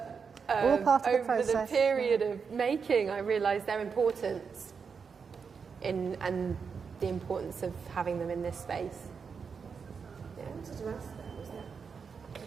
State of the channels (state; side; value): quieter; left; 5.8 dB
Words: all part of the over process. the period of making, I realised their importance and the importance of having them in this space. I wanted to ask that,